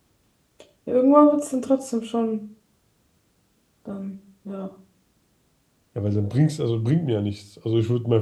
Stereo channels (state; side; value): identical; both; correlation 1.00